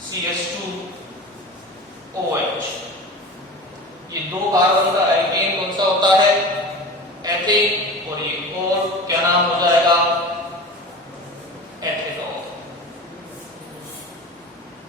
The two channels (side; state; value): both; normal; correlation 0.33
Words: CH2OH ये दो कार्बन का एल्केन कौन सा होता है? एथेन। और ये और क्या नाम हो जाएगा? एथेनॉल।